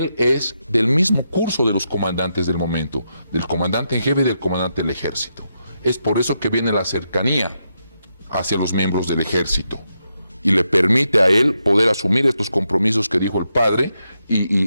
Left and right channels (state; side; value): inverted; both; correlation -0.83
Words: es del mismo curso de los comandantes del momento, del comandante en jefe y del comandante del ejército. Es por eso que viene la cercanía hacia los miembros del ejército y le permite a él poder asumir estos compromisos que dijo el padre